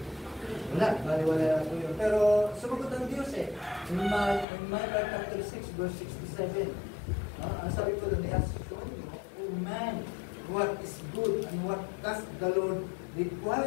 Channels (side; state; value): right; drops out; at 4.5 s